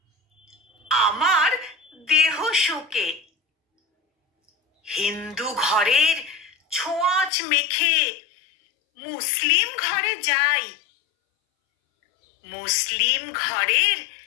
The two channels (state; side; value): drops out; right; at 7.3 s